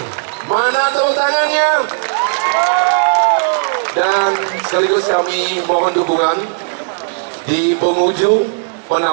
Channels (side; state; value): left; silent; digital silence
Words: mana tepuk tangannya? Dan sekaligus kami mohon dukungan di penghujung